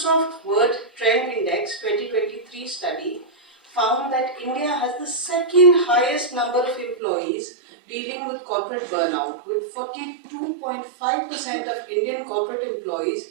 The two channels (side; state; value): left; drops out; at 7.0 s